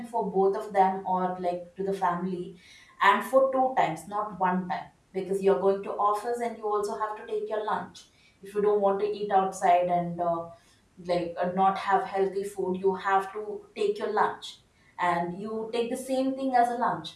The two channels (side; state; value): both; identical; correlation 1.00